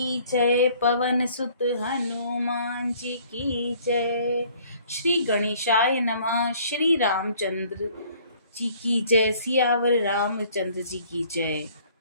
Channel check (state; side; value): inverted; both; correlation -0.57